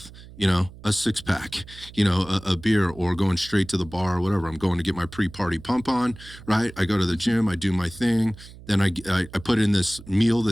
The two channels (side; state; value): right; noise; hum, 18 dB below the sound